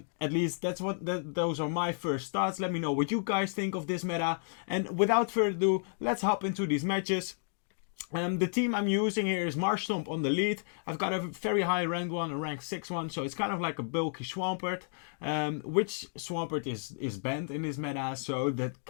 least that's those are my first thoughts. Let me know what you guys think of this meta, and without further ado, let's hop into these matches. The team I'm using here is Marshtomp on the lead. I've got a very high ranked one, a rank 6 one, so it's kind of like a bulky Swampert. Which Swampert is banned in this meta, so that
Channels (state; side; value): silent; right; digital silence